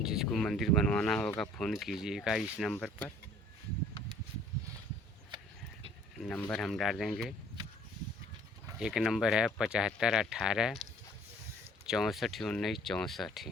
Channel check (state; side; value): normal; both; correlation 0.54